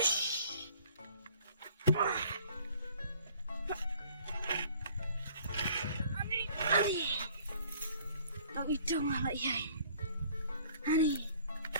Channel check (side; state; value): both; inverted; correlation -0.55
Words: Ani, ang ito nga iyay. Ani,